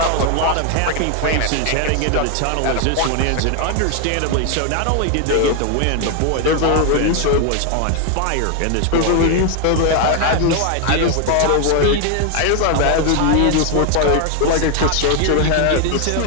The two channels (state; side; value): different; both; correlation 0.01